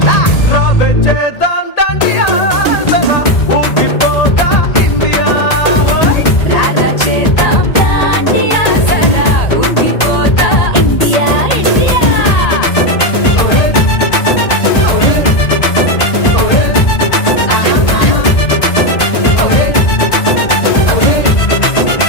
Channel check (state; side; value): late; right; 1.8 ms